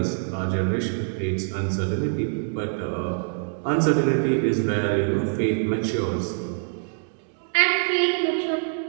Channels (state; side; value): silent; left; digital silence